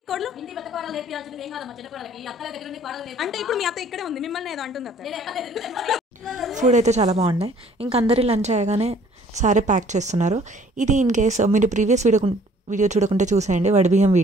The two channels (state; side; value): normal; both; correlation 0.56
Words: అంటే ఇప్పుడు మీ అత్త ఇక్కడే ఉంది, మిమ్మల్ని ఏదో అంటుంది అత్త. ఫుడ్ అయితే చాలా బాగున్నాయి. ఇంక అందరి లంచ్ అయ్యగానే సారీ ప్యాక్ చేస్తున్నారు. ఇది ఇన్ కేస్ మీరు ప్రీవియస్ వీడియో చూడకుంటే చూసేయండి, వడిబియ్యం